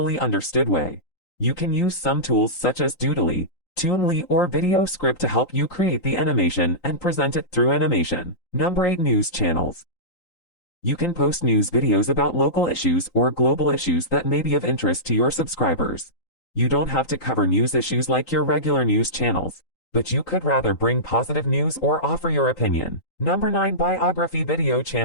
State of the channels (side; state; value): right; late; 3.9 ms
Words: understood way. You can use some tools such as Doodly, Toonly, or Video Script to help you create the animation and present it through animation. Number 8, News channels. You can post news videos about local issues or global issues that may be of interest to your subscribers. You don't have to cover news issues like your regular news channels, but you could rather bring positive news or offer your opinion. Number 9, Biography video